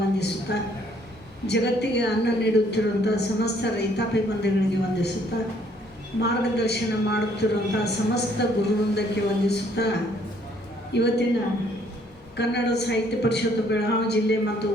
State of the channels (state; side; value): normal; both; correlation 0.64